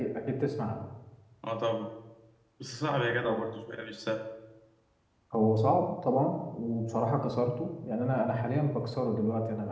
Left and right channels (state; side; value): identical; both; correlation 1.00